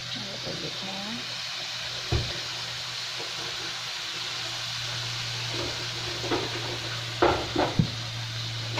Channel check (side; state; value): both; identical; correlation 1.00